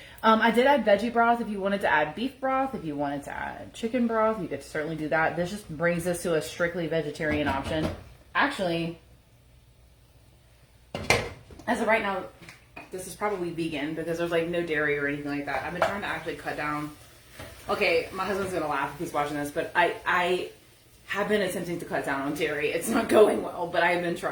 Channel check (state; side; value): identical; both; correlation 1.00